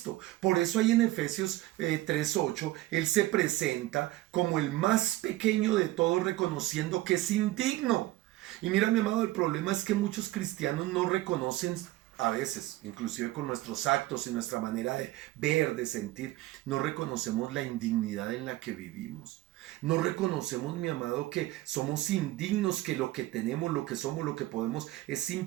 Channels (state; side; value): quieter; left; 17.2 dB